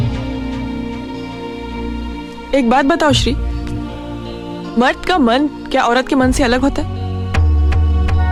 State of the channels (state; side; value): identical; both; correlation 1.00